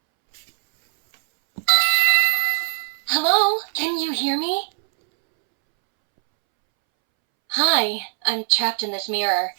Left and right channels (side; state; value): left; silent; 65 dB below the other